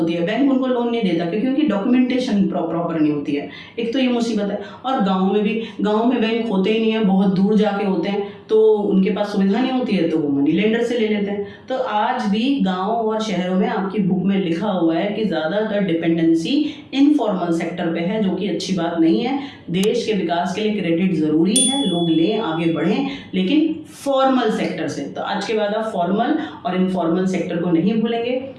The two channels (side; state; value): both; identical; correlation 1.00